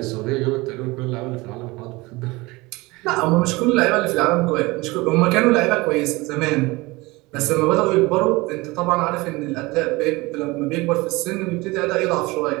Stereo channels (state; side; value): quieter; left; 22.6 dB